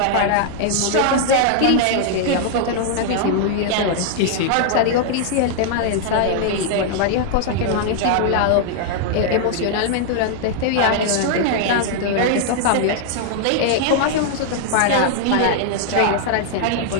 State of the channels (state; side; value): different; both; correlation 0.00